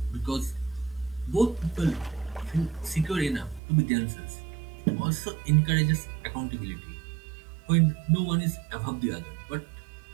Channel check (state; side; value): drops out; left; at 3.6 s